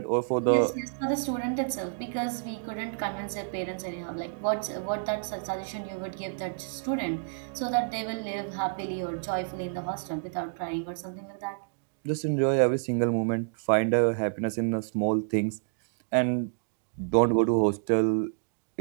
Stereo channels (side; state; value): left; silent; digital silence